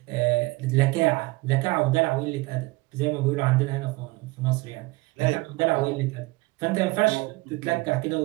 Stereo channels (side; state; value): left; quieter; 22.9 dB